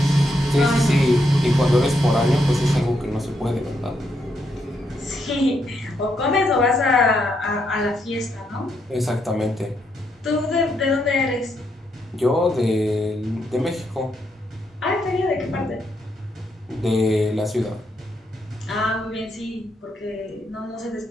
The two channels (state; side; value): normal; both; correlation 0.78